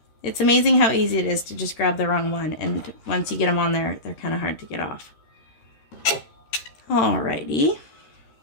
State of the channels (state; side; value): late; right; 13 ms